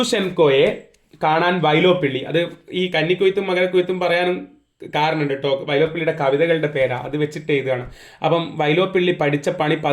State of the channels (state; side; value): identical; both; correlation 1.00